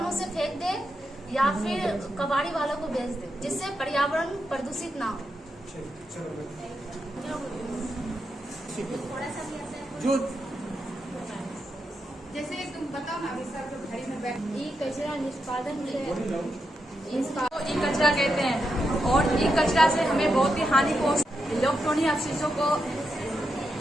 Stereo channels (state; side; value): normal; both; correlation 0.85